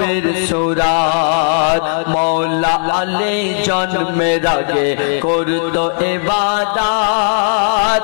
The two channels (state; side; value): silent; right; digital silence